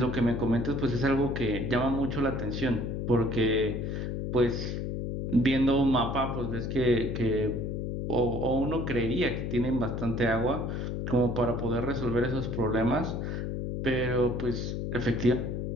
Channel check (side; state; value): left; noise; hum, 3 dB below the sound